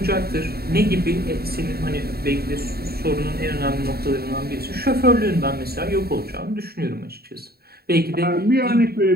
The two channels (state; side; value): late; left; 0.45 ms